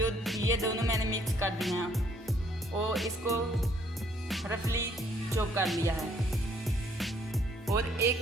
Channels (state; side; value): normal; both; correlation 0.65